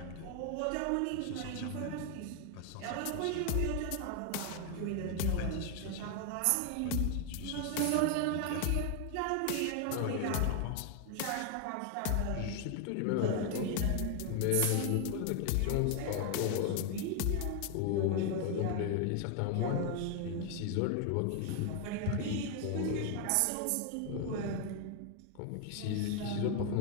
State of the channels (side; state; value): both; different; correlation 0.01